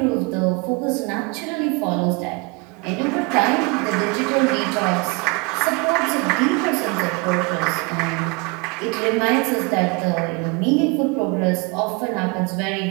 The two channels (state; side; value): quieter; left; 29.0 dB